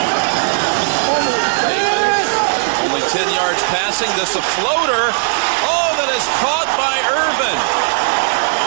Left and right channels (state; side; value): silent; left; 65 dB below the other